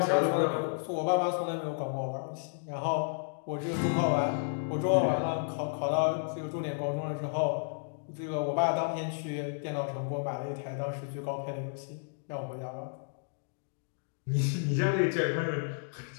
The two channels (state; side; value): silent; right; digital silence